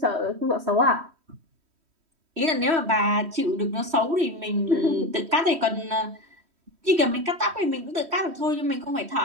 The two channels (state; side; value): late; left; 3.1 ms